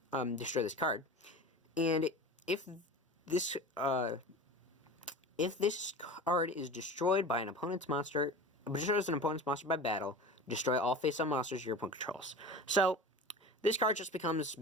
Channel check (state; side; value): normal; both; correlation 0.34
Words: destroy this card. And if this card is destroyed by an opponent's monster, destroys an opponent's monster by battle, destroy all face-up monsters your opponent controls. So, this card just becomes